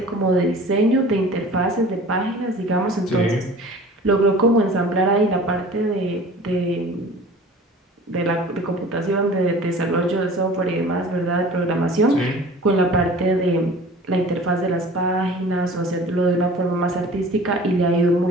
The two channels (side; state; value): both; normal; correlation 0.43